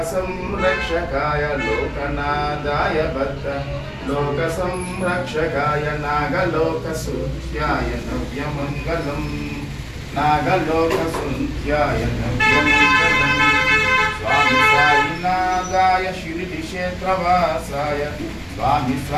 लोकनाथाय भक्त लोकसंरक्षकाय नागलोकसूत्याय नव्यमङ्गलम् नागलोकसूत्याय नव्यमङ्गलम् स्वामी साईनाथाय श्रीक्षेत्रवासाय स्वामी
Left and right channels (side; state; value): both; identical; correlation 1.00